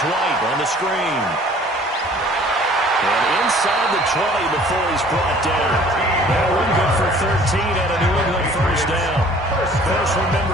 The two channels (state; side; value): normal; both; correlation 0.52